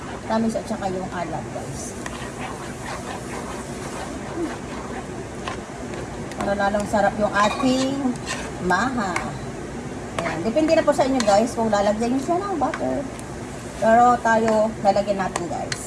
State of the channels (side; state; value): both; identical; correlation 1.00